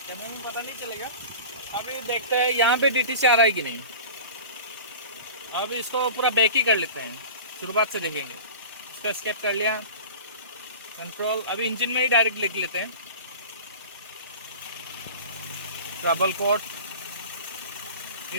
कैमरे में पता नहीं चलेगा। अभी देखते हैं यहाँ पे डीटीसी आ रहा है कि नहीं। अभी इसको पूरा बैक ही कर लेते हैं, शुरुआत से देखेंगे। इसका स्केप कर लिया, कंट्रोल, अभी इंजन में ही डायरेक्ट लिख लेते हैं, ट्रबल कोड।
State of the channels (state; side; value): inverted; both; correlation -0.36